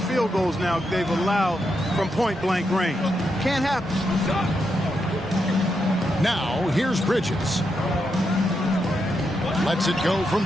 field goals now they've allowed from point-blank range. Can't happen. Now, here's Bridges. Lets it go from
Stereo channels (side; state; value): both; normal; correlation 0.83